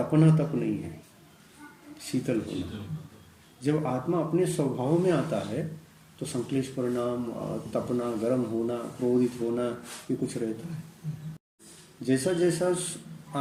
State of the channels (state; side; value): identical; both; correlation 1.00